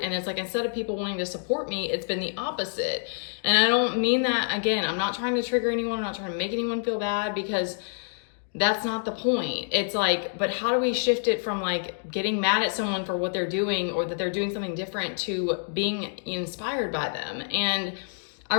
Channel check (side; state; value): right; silent; digital silence